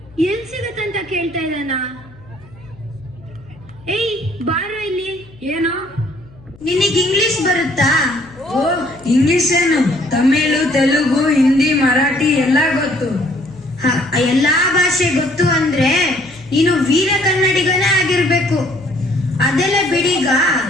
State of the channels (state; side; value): noise; left; hum, 24 dB below the sound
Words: ಎಲ್ಲಿ ಸಿಗತ್ತಂತ ಕೇಳ್ತಾ ಇದ್ದಾನ? ಏಯ್ ಬಾರೋ ಇಲ್ಲಿ. ಏನು? ನಿನಗೆ ಇಂಗ್ಲಿಷ್ ಬರುತ್ತಾ? ಓ, ಇಂಗ್ಲಿಷ್ ಏನು? ತಮಿಳು, ತೆಲುಗು, ಹಿಂದಿ, ಮರಾಠಿ ಎಲ್ಲ ಗೊತ್ತು. ಎಲ್ಲಾ ಭಾಷೆ ಗೊತ್ತು ಅಂದ್ರೆ ನೀನು ವೀರ ಕನ್ನಡಿಗನೇ ಆಗಿರ್ಬೇಕು. ಅದೆಲ್ಲ ಬಿಡೀಗ